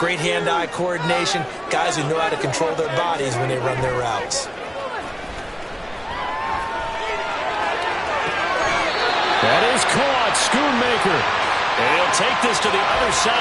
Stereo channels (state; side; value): identical; both; correlation 1.00